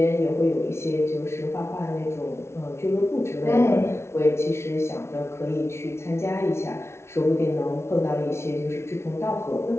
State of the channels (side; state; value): right; late; 0.13 ms